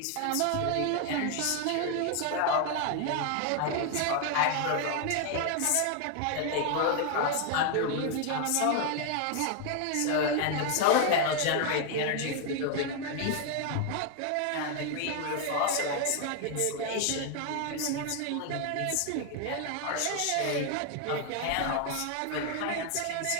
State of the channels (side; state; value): both; different; correlation 0.00